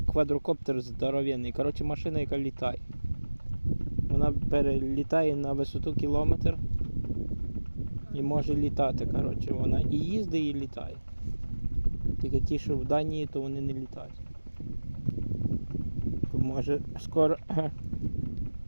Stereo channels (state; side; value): inverted; both; correlation -1.00